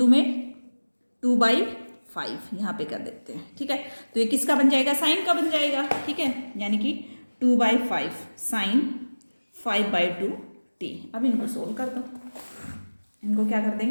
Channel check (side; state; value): both; inverted; correlation -1.00